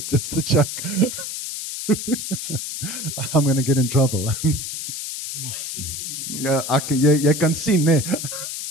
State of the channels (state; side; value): noise; left; hiss, 6 dB below the sound